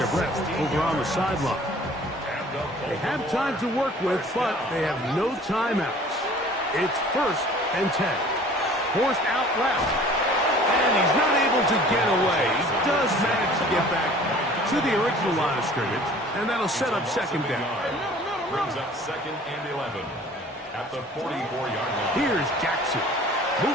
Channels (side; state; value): both; normal; correlation 0.49